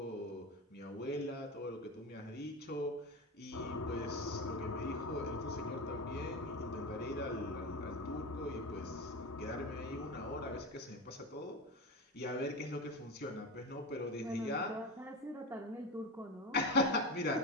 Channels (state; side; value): normal; both; correlation 0.22